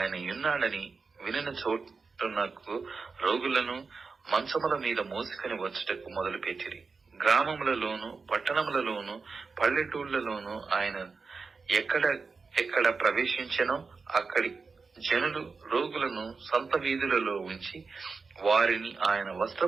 ఉన్నాడని వినిన చోటునకు రోగులను మంచముల మీద మోసుకొని వచ్చుటకు మొదలుపెట్టిరి. గ్రామములలోను పట్టణములలోను పల్లెటూళ్లలోను ఆయన ఎక్కడ ప్రవేశించెనో అక్కడి జనులు రోగులను సంత వీధులలో ఉంచి వారిని ఆయన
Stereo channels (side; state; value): left; quieter; 4.6 dB